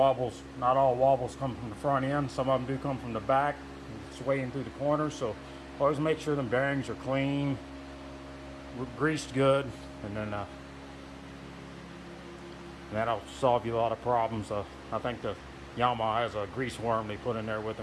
not all wobbles come from the front end. Some of them do come from the back, swaying through the corners. So always make sure the bearings are clean, greased good, and then that'll solve you a lot of problems. I think the Yamaha has a grease worm they put in there with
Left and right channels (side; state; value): both; identical; correlation 1.00